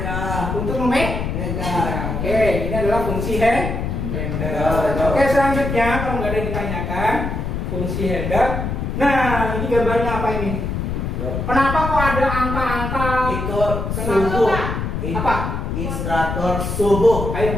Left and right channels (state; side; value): noise; left; rumble, 3 dB below the sound